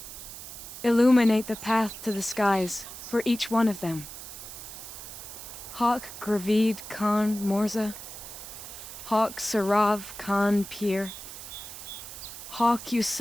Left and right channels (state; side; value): noise; right; hiss, 12 dB below the sound